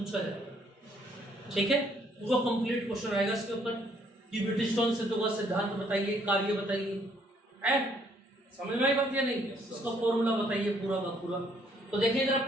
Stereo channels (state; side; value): normal; both; correlation 0.66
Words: जाएगा, ठीक है। वो कंप्लीट क्वेश्चन आएगा इसके ऊपर कि व्हीटस्टोन सेतु का सिद्धांत बताइए, कार्य बताइए, है समझ में आई बात या नहीं? उसका फॉर्मूला बताइए पूरा का पूरा। तो देखिए जरा